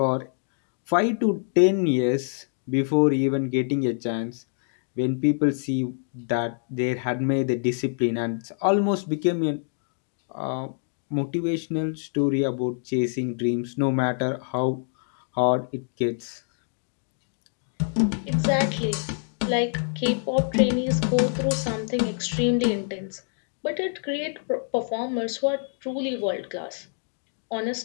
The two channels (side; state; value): right; silent; digital silence